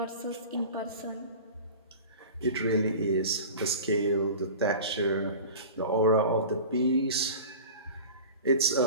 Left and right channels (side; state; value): both; inverted; correlation -0.36